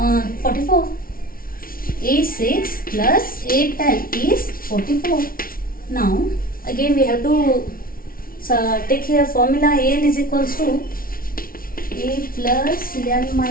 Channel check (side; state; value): right; late; 0.43 ms